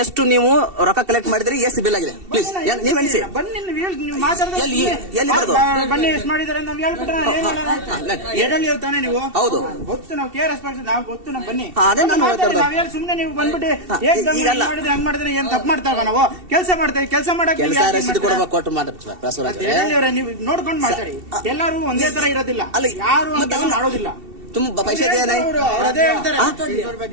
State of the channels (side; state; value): left; late; 2.7 ms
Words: ಎಷ್ಟು ನೀವು ರೊಕ್ಕ ಕಲೆಕ್ಟ್ ಮಾಡಿದ್ರಿ ಎಷ್ಟು ಬಿಲ್ ಆಗಿದೆ ಪ್ಲೀಸ್ ನೀವ್ ಎಣಿಸಿ ಬನ್ನಿ ನೀವು ಮಾತಾಡ್ತಾ ಎಲ್ಲಿ ಬರೋದು ಬನ್ನಿ ಎಷ್ಟು ಮಾಡಿದಾರೆ ನಾವ್ ಹೇಳ್ಬಿಟ್ರೆ ಎಡಲ್ಲಿ ತಾನೆ ನೀವು ಹೌದು ಗೊತ್ತು ನಾವು ಕೇರ್ ನಾವು ಗೊತ್ತು ನಾವು ಬನ್ನಿ ಅದೇ ನಾನು ಹೇಳ್ತಾ ನಾವ್ ಹೇಳಿ ಸುಮ್ನೆ ನೀವು ಬಂದ್ಬಿಟ್ಟು ಮಾಡಿದ್ರೆ ಹಂಗ್ ಮಾಡಿದ್ರೆ ಏನ್ ತಪ್ಪು ಮಾಡ್ತಾವ ನಾವು ಕೆಲಸ ಮಾಡ್ತೇವೆ ಕೆಲಸ ಮಾಡಕ್ಕೆ ರಸೀದಿ ಕೊಡಬೇಕು ಕೊಟ್ಟು ಮಾಡಿ ಬಸವರಾಜ್ ನೀವು ನೋಡ್ಕೊಂಡು ಮಾತಾಡಿ ಎಲ್ಲರೂ ಒಂದೇ ತರ ಇರೋದಿಲ್ಲ ಯಾರು ಮಾಡೋದಿಲ್ಲ तुम पैसे दिया नहीं